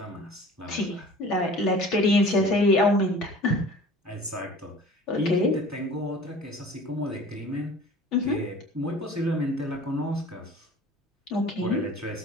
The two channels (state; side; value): normal; both; correlation 0.44